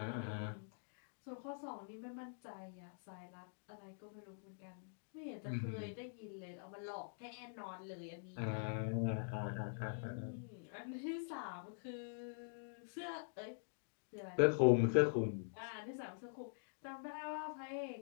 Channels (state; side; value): silent; right; digital silence